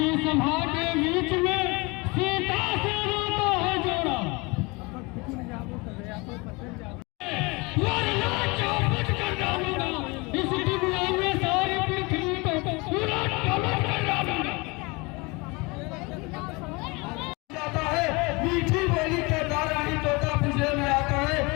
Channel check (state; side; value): quieter; right; 26.4 dB